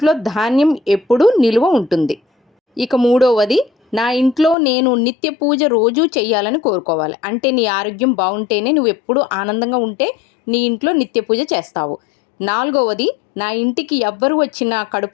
ధాన్యం ఎప్పుడూ నిలువ ఉంటుంది. ఇక మూడవది, నా ఇంట్లో నేను నిత్య పూజ రోజూ చెయ్యాలని కోరుకోవాలి. అంటే నీ ఆరోగ్యం బాగుంటేనే నువ్వు ఎప్పుడూ ఆనందంగా ఉంటే నీ ఇంట్లో నిత్య పూజ చేస్తావు. నాలుగవది, నా ఇంటికి ఎవ్వరు వచ్చినా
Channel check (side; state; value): right; drops out; at 4.5 s